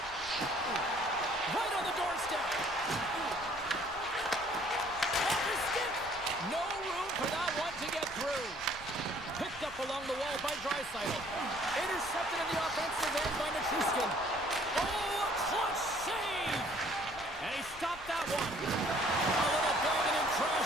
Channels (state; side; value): noise; left; rumble, 19 dB below the sound